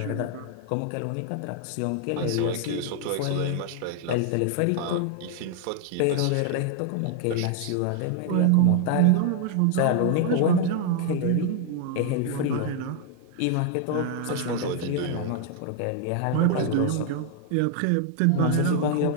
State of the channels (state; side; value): different; both; correlation 0.00